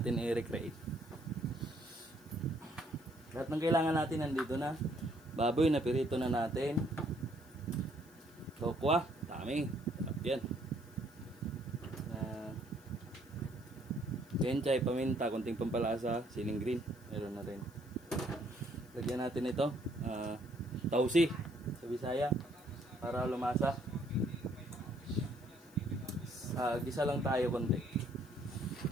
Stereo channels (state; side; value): noise; left; hiss, 26 dB below the sound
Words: i-recreate. Lahat ng kailangan natin nandito na. Baboy na pirito na natin. Tokwa, dami. Sarap yan. Kenchay, paminta, konting pampalasa, siling green, meron na rin. Lagyan natin ito, tausi sa Bisaya para lumasa. Gisa lang tayo konti.